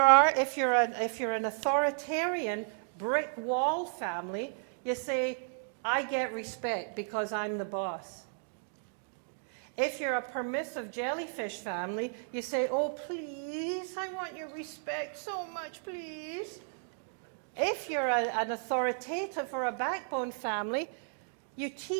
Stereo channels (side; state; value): left; silent; digital silence